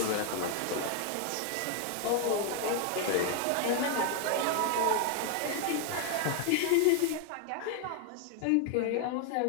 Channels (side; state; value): both; different; correlation 0.00